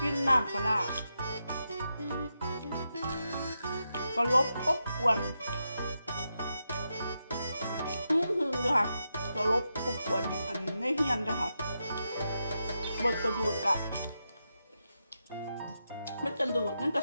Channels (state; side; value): inverted; both; correlation -0.86